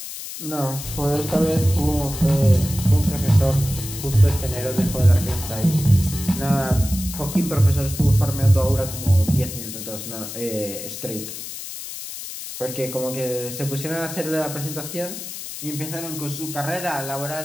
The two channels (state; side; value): noise; left; hiss, 9 dB below the sound